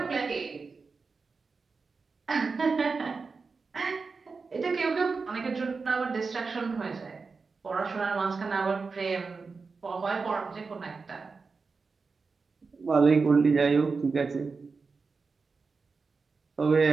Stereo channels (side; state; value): left; quieter; 4.6 dB